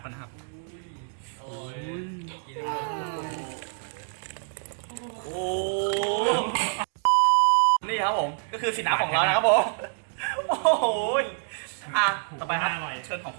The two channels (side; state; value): left; silent; digital silence